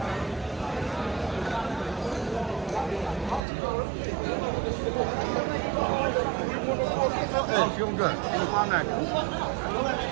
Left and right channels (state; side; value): drops out; left; at 3.4 s